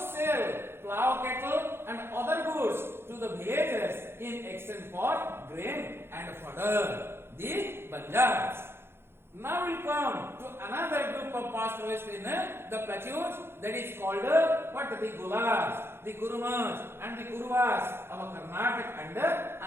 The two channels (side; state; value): left; late; 0.11 ms